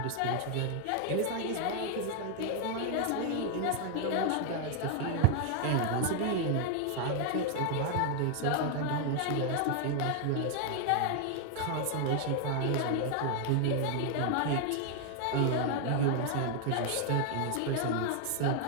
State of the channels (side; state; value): both; different; correlation 0.00